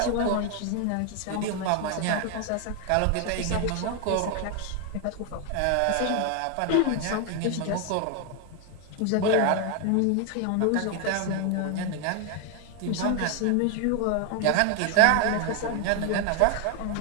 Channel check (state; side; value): different; both; correlation 0.01